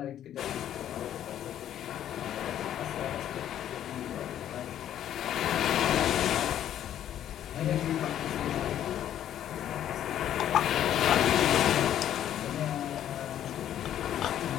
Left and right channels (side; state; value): right; quieter; 11.0 dB